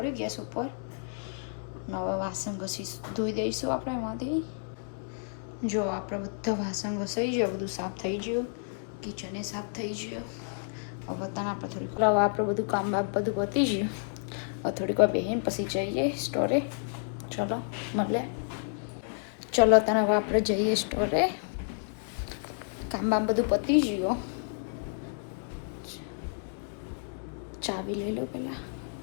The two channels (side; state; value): right; silent; digital silence